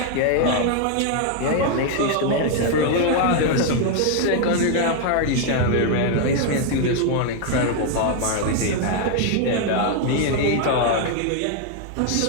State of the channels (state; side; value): different; both; correlation 0.00